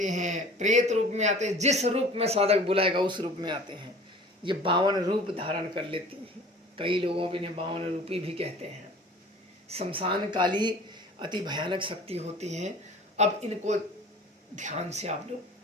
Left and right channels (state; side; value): normal; both; correlation 0.44